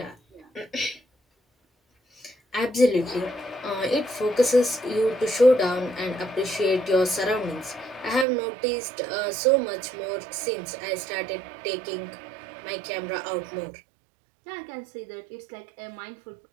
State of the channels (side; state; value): left; drops out; at 8.2 s